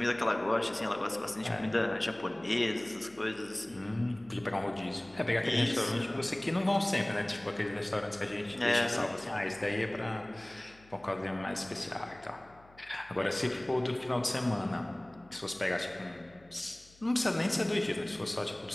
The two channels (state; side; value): noise; left; hum, 27 dB below the sound